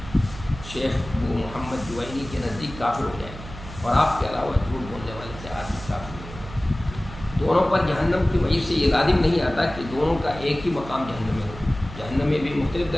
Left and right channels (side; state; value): right; noise; hum, 13 dB below the sound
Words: شیخ ابو محمد جوینی کے نزدیک کافر ہو جائے، اور آپ کے علاوہ جھوٹ بولنے والے سے آدمی کافر ہو جائے. دونوں پر جہنم کی وجہ سے یہ لازم نہیں آتا کہ دونوں کا ایک ہی مقام جہنم میں ہو. جہنم میں بھی مختلف